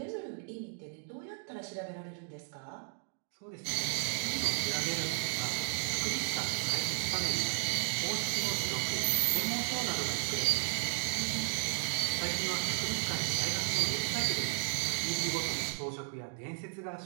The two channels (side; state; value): left; silent; digital silence